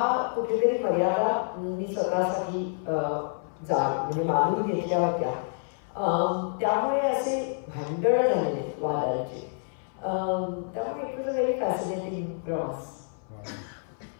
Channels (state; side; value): silent; right; 59 dB below the other